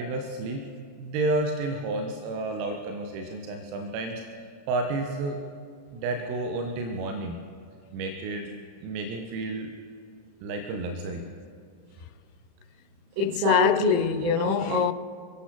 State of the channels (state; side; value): late; left; 35 ms